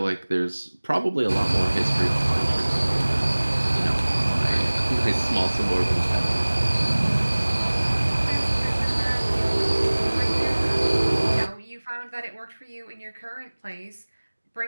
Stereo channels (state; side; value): inverted; both; correlation -1.00